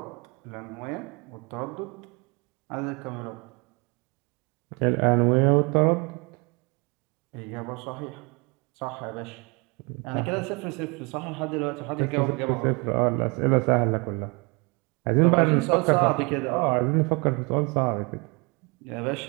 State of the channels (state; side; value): quieter; left; 29.9 dB